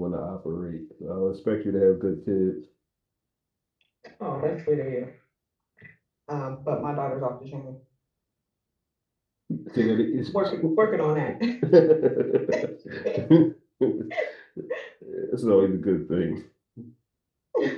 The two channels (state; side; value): identical; both; correlation 1.00